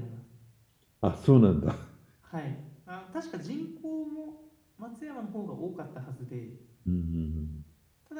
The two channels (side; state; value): both; identical; correlation 1.00